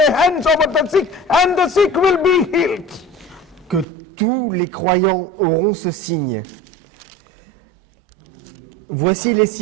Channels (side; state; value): left; drops out; at 3.9 s